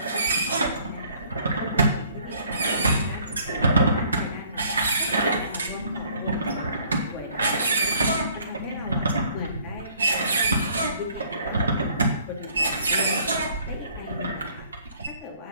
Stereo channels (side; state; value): both; inverted; correlation -0.59